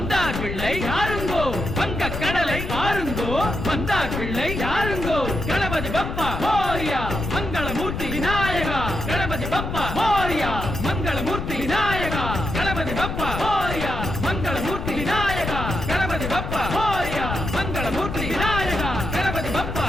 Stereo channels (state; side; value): noise; left; rumble, 5 dB below the sound